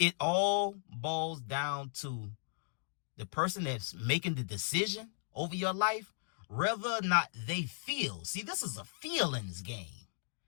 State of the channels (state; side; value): silent; right; digital silence